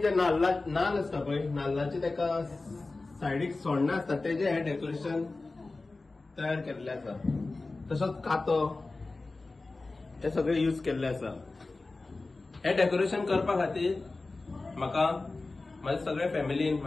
नाल्ल असता पळय, नाल्लाचे तेका सायडीक सोण्ण असता तेजे हे डेकोरेशन तयार केल्ले आसा. तसोच कातो हे सगळे यूज केल्ले आसा. हे डेकोरेशन करपा खातीर म्हाका माझ्या सगळ्या फॅमिलीन,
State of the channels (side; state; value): right; quieter; 3.4 dB